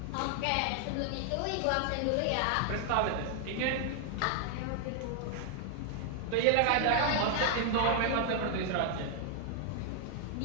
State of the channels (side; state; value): both; different; correlation 0.00